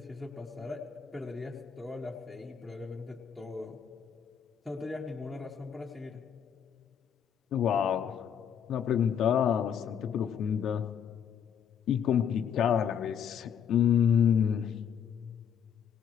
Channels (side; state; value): right; quieter; 8.0 dB